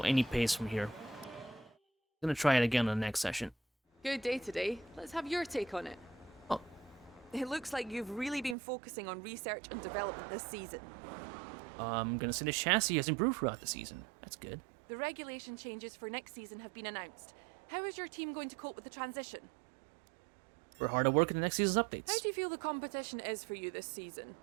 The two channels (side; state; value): left; drops out; at 8.6 s